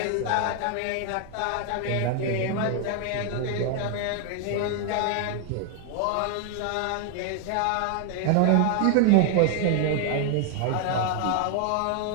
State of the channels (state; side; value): different; both; correlation 0.00